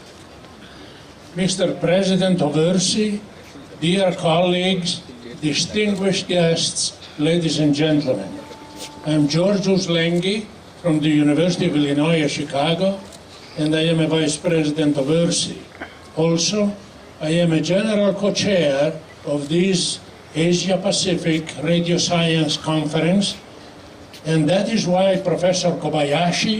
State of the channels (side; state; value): both; identical; correlation 1.00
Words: Mr. President of ERSI, dear colleagues, distinguished guests, ladies and gentlemen. I'm Georgios Lengi from the University of Illinois at Chicago, and I am a Vice President of ERSI. Also, I am a General Co-Chair of this Asia-Pacific Radio Science Conference, and that is why Professor